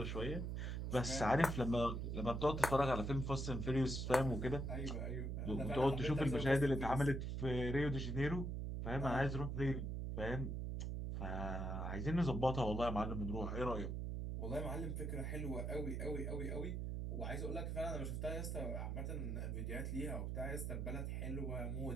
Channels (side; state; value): right; noise; hum, 2 dB below the sound